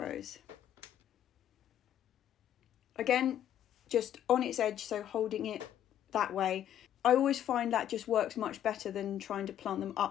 Again, just on its edge, so holding it that way. I always find that just works much better than trying to plant them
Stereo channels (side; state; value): right; quieter; 10.8 dB